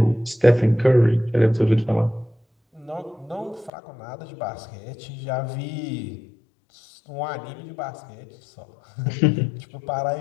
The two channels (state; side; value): drops out; right; at 3.7 s